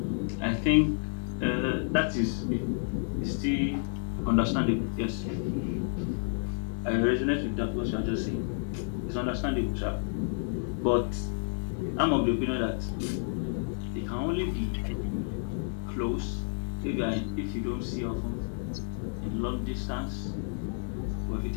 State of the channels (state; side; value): silent; right; digital silence